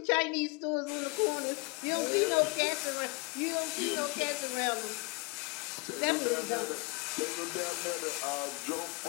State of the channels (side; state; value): right; quieter; 29.2 dB